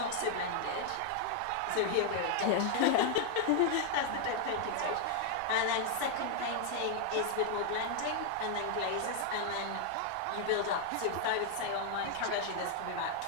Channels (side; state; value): both; different; correlation 0.00